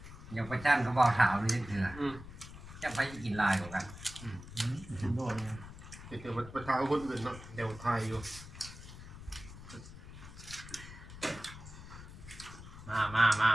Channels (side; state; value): left; noise; rumble, 14 dB below the sound